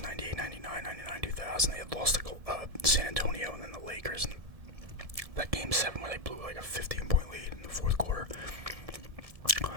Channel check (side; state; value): left; late; 1.7 ms